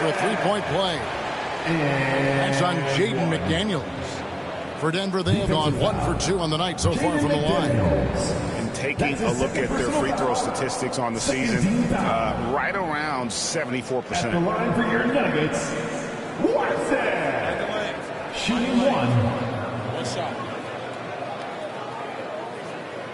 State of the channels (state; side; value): identical; both; correlation 1.00